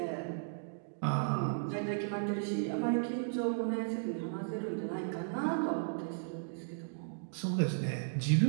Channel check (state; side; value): silent; left; digital silence